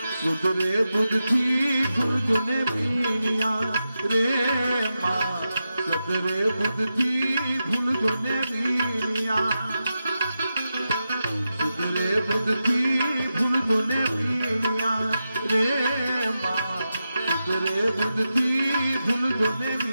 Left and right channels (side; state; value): both; inverted; correlation -0.90